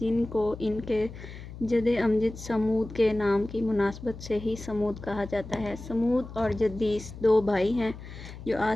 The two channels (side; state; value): left; noise; hum, 13 dB below the sound